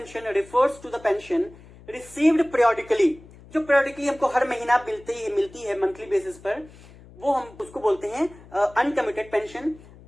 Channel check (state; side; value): noise; left; hum, 22 dB below the sound